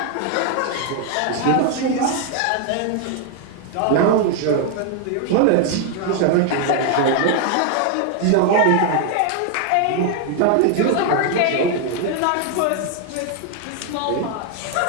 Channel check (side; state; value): both; different; correlation 0.00